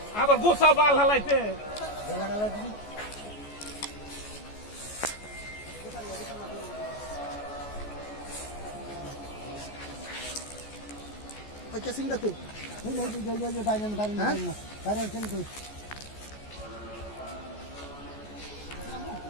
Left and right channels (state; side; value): late; right; 14 ms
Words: আবার গোসা বাল হালাইতে কেসিং দেখো